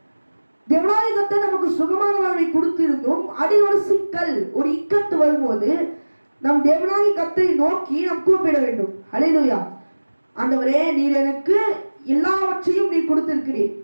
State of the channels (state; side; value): inverted; both; correlation -1.00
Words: தேவனாகிய கர்த்தர் நமக்கு சுகமான வாழ்வை கொடுத்திருந்தும் அதில் ஒரு சிக்கல், ஒரு இக்கட்டு வரும்போது நாம் தேவனாகிய கர்த்தரை நோக்கி நாம் கூப்பிட வேண்டும். ஹல்லேலூயா. ஆண்டவரே, நீர் எனக்கு எல்லாவற்றையும் நீர் கொடுத்திருக்கிறீர்.